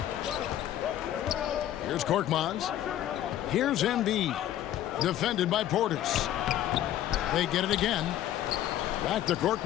Here's Korkmaz. Here's Embiid. Defended by Portis. They get it again. Back to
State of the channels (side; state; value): right; quieter; 12.2 dB